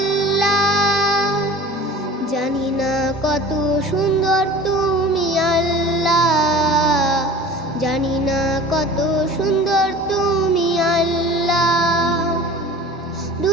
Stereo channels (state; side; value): normal; both; correlation 0.40